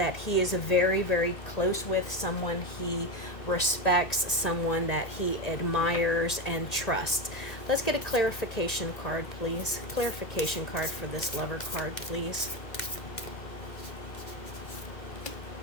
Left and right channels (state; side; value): late; right; 1.9 ms